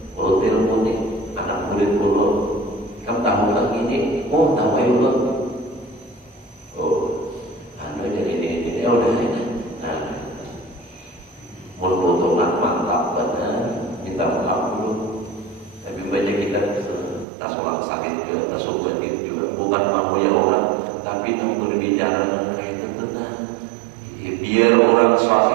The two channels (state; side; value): drops out; left; at 17.2 s